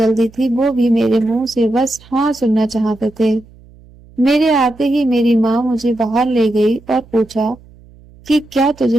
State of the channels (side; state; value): right; noise; hum, 25 dB below the sound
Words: थी, वो भी मेरे मुंह से बस हाँ सुनना चाहते थे। मेरे आते ही मेरी माँ मुझे बाहर ले गई और पूछा कि क्या तुझे